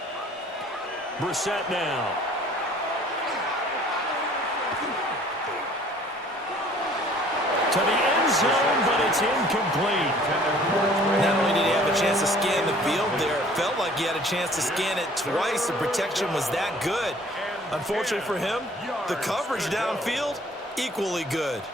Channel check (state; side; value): normal; both; correlation 0.54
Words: Brissett now. To the end zone, but it's incomplete. Not only did he have a chance to scan the field there, it felt like he had a chance to scan it twice. The protection was that good. Unfortunately for him, the coverage downfield, equally good.